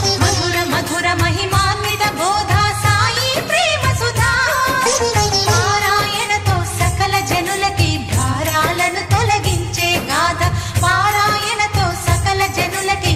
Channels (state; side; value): identical; both; correlation 1.00